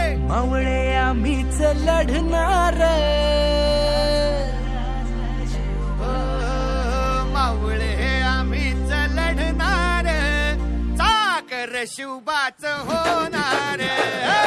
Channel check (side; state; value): both; identical; correlation 1.00